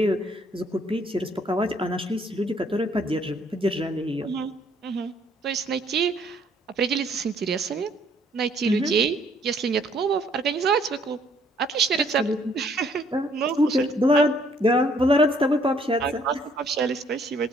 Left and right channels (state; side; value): normal; both; correlation 0.64